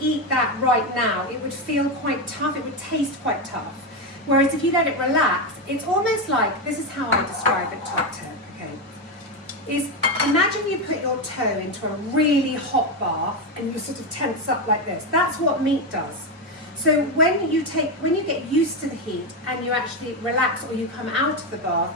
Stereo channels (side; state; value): both; normal; correlation 0.10